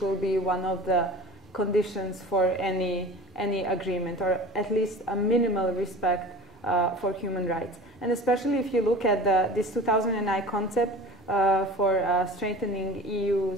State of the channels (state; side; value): normal; both; correlation 0.37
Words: will be one of the conditions for any agreement, or at least a minimal respect for human rights. And especially if you look at this 2009 concept for strengthening